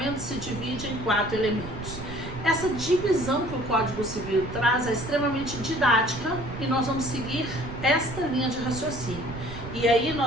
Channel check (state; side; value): noise; right; rumble, 11 dB below the sound